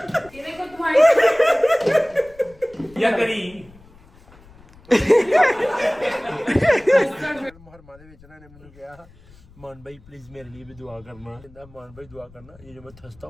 ये देखो तुम्हारी या करी मुहर्रमा ਦੇ ਵਿੱਚ ਇਹਨਾਂ ਨੇ ਮੈਨੂੰ ਕਿਹਾ मान भाई प्लीज मेरे लिए भी दुआ करना कहता मान भाई दुआ करना ये जो मैं थसता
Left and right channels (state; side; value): noise; left; rumble, 25 dB below the sound